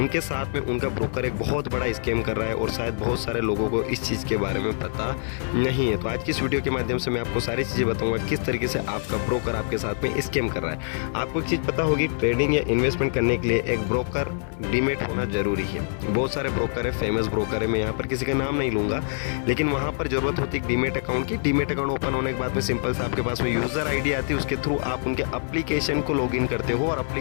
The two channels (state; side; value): silent; right; digital silence